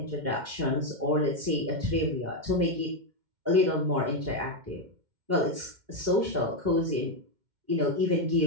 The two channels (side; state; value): left; late; 2.1 ms